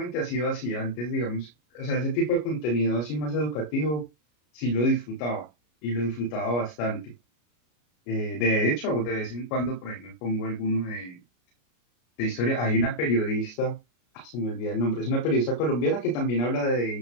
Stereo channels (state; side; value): late; right; 33 ms